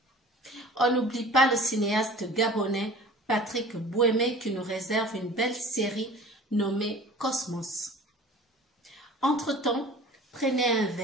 On n'oublie pas le cinéaste gabonais Patrick Bouémé qui nous réserve une belle série nommée Cosmos. Entre-temps, prenez un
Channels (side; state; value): both; normal; correlation 0.44